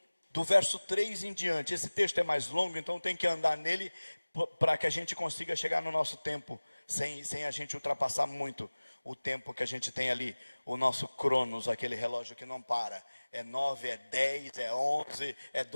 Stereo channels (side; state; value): both; inverted; correlation -1.00